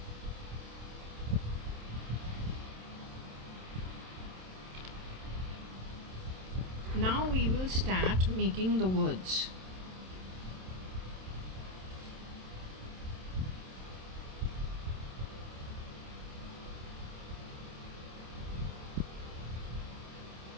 Now we will start making the words.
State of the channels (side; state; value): left; late; 27 ms